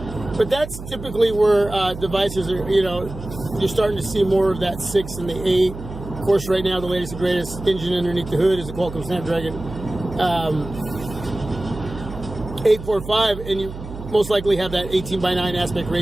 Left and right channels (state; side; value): noise; right; hum, 11 dB below the sound